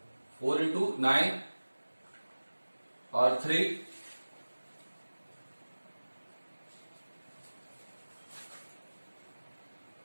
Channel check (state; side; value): inverted; both; correlation -1.00